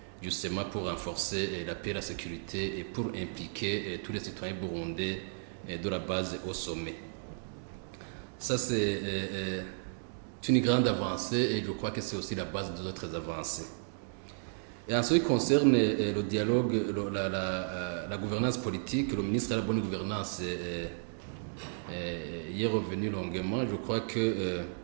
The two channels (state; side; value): silent; left; digital silence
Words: justement pour renforcer la paix et la sécurité et pour impliquer tous les citoyens burundais de la base au sommet. Ça, c'est une grande avancée et je crois que c'est aussi la base des autres avancées. Et en ce qui concerne le dialogue, la gouvernance politique, le ministre de la Bonne Gouvernance y est revenu longuement. Je crois que